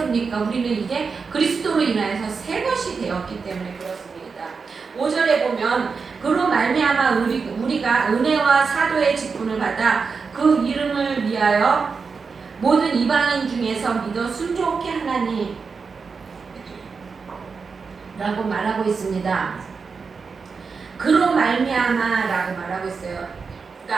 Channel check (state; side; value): quieter; left; 5.1 dB